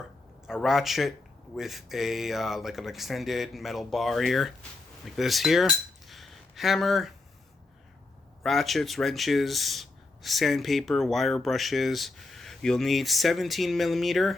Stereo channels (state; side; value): quieter; right; 3.2 dB